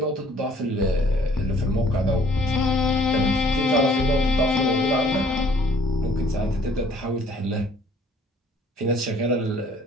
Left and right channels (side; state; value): both; normal; correlation 0.58